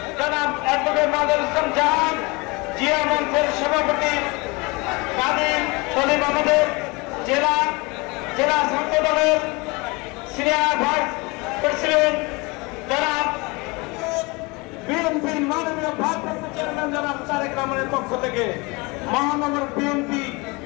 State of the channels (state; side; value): quieter; right; 26.2 dB